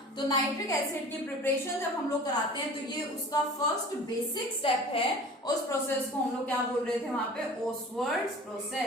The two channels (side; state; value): both; normal; correlation 0.42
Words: तो नाइट्रिक एसिड की प्रिपरेशन जब हम लोग कराते हैं तो ये उसका फर्स्ट बेसिक स्टेप है। उस प्रोसेस को हम लोग क्या बोल रहे थे वहां पे, ओसवर्ड्स